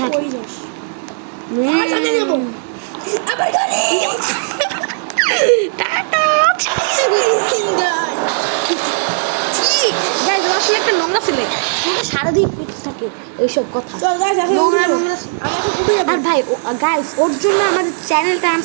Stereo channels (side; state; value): left; silent; digital silence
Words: কই যাস আমার সাথে যাবো আবার গাড়ি টাটা গাইস আসলে একটা নোংরা ছেলে তোকে সারাদিন পিছনে থাকে এইসব কথা চল গাইস নোংরা আমাকে খুবই আর ভাই গাইস ওর জন্য আমাদের চ্যানেলটা